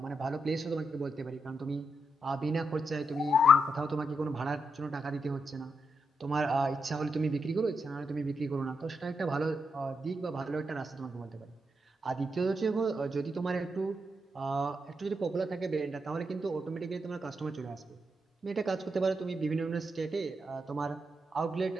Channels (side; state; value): both; normal; correlation 0.82